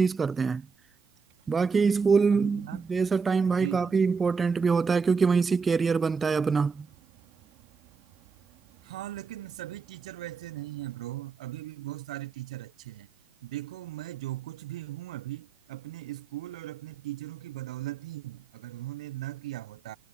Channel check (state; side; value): quieter; left; 5.2 dB